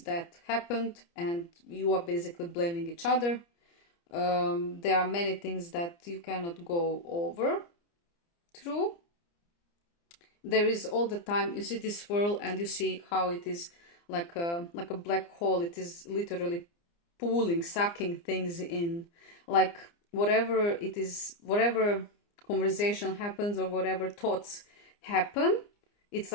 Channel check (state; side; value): late; right; 29 ms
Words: happened and you are basically blaming each other. There are many things that you cannot go over through. There is all the time, you see this swirl and you see how it is like a black hole. It is literally pulling, sucking things in. Like whatever it is, whatever conversation happens or whatever thoughts happen, it's